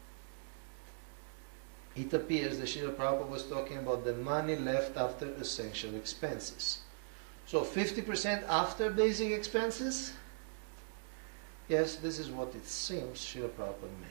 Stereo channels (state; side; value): silent; left; digital silence